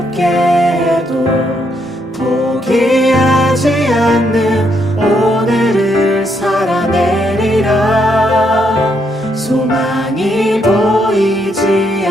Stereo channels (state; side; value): normal; both; correlation 0.75